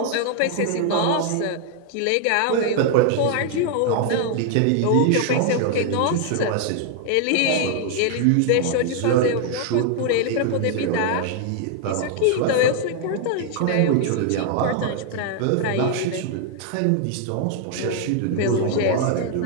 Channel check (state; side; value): different; both; correlation 0.00